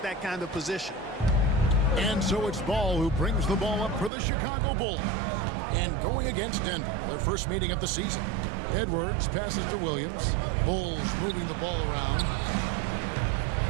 that kind of position. And so it's Ball who brings the ball up for the Chicago Bulls. And going against Denver, their first meeting of the season. Edwards passes to Williams. Bulls moving the ball around.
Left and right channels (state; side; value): drops out; left; at 4.1 s